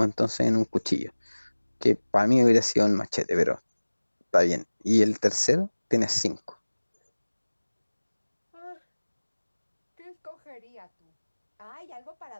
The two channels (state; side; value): inverted; both; correlation -1.00